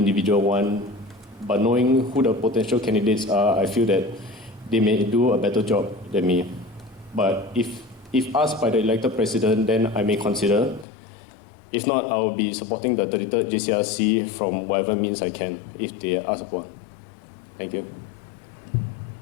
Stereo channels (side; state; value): right; drops out; at 10.9 s